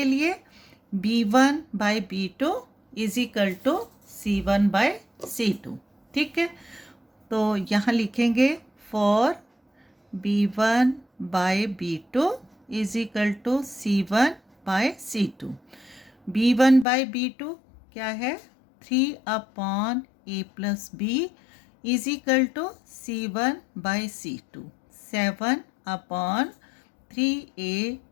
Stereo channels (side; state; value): right; drops out; at 16.9 s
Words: लिए, b1 by b2 is equal to c1 by c2, ठीक है। तो यहाँ लिखेंगे for b1 by b2 is equal to c1 by c2। b1 by b2 क्या है, 3 upon a plus b is equal to c1 by c2, 7 upon 3a